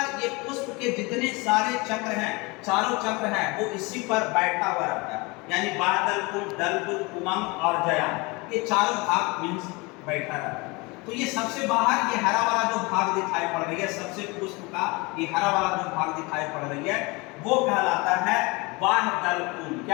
ये पुष्प के जितने सारे चक्र हैं, चारों चक्र हैं, वो इसी पर बैठा हुआ रहता है। यानी बादल पुंज, दल पुंज, उमंग और जयांग, ये चारों भाग मीन्स बैठा रहता है। तो ये सबसे बाहर ये हरा वाला जो भाग दिखाई पड़ रही है, सबसे पुष्प का ये हरा वाला जो भाग दिखाई पड़ रही है वो कहलाता है वाह दल पुंज।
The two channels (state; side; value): quieter; right; 26.0 dB